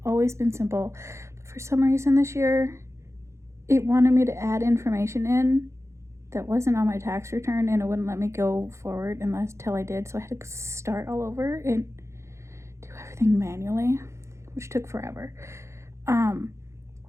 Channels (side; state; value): left; late; 0.14 ms